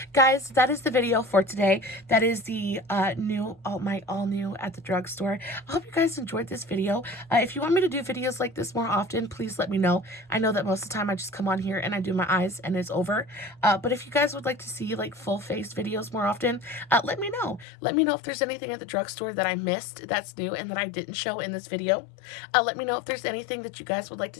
Guys, that is the video for today. That is the all new at the drugstore. I hope you guys enjoyed this video. If you want me to do videos like this more often, please let me know. I know that most of the time I just come on here and I do my eyes and it's over. But if you guys would like to see like full face videos more often, let me know. Let me know if there's anything at the drugstore that I missed that's new and that I didn't show in this video. Let me know if there's anything that you guys would like to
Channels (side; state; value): right; drops out; at 17.7 s